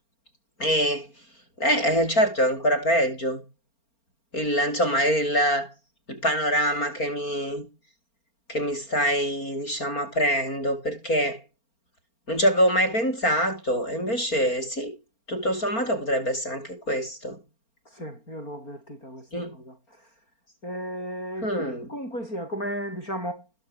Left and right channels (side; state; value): right; late; 4.4 ms